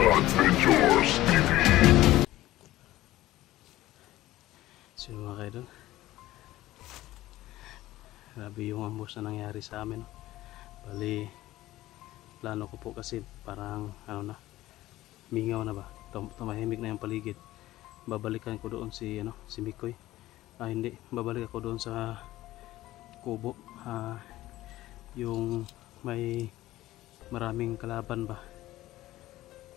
mga kaidol, grabe yung ambos na nangyari sa amin. Bali, plano ko po kasi parang ano na, mingaw na ba, tumahimik na yung paligid. Babalikan ko doon si Mikoy. Hindi, babalik ako doon sa kubo, yung may maraming kalaban ba.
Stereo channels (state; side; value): quieter; right; 16.0 dB